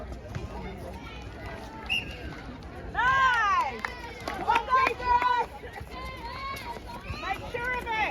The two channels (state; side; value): identical; both; correlation 1.00